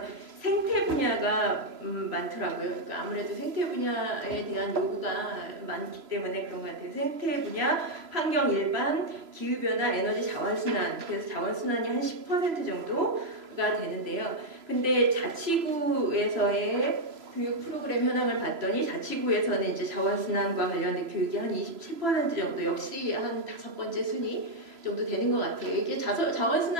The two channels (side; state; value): left; late; 3.0 ms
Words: 생태 분야가 많더라고요. 그러니까 아무래도 생태 분야에 대한 요구가 많기 때문에 그런 것 같아요. 생태 분야, 환경 일반, 기후변화, 에너지 자원순환. 그래서 자원순환이 한 10% 정도가 되는데요. 근데 자치구에서의 교육 프로그램 현황을 봤더니 자치구에서는 이제 자원순환과 관련된 교육이 한 27% 정도, 역시 한 5번째 순위 정도 되는 것 같아요. 이게